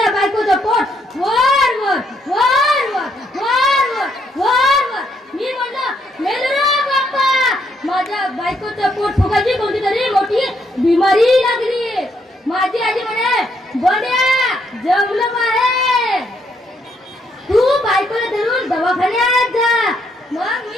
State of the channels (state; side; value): normal; both; correlation 0.74